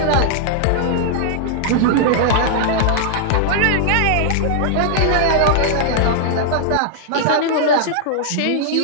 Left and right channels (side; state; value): both; different; correlation -0.01